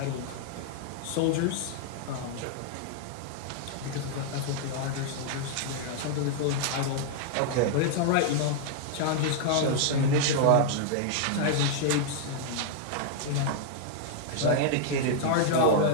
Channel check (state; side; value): different; both; correlation -0.01